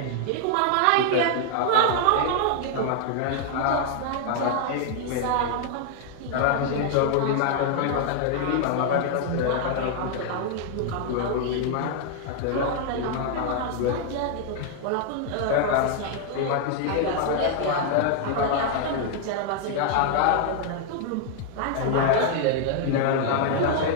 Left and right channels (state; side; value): different; both; correlation 0.00